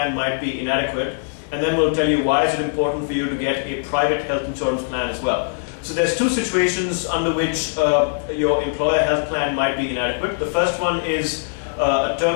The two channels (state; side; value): silent; right; digital silence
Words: might be inadequate, and then we'll tell you why is it important for you to get a private health insurance plan as well. So there's two situations under which your employer health plan might be inadequate. The first one is a